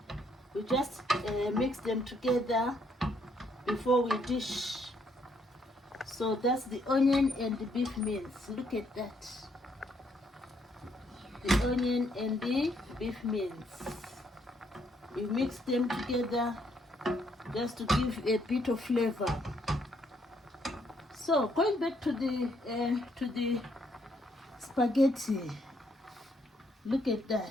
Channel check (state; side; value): normal; both; correlation 0.71